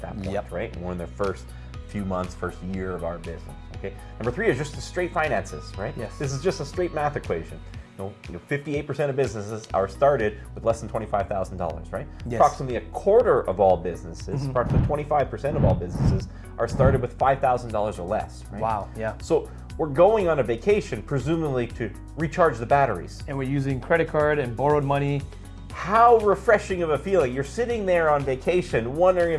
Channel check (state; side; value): identical; both; correlation 1.00